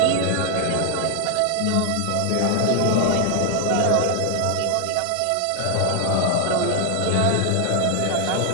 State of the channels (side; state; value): both; different; correlation 0.00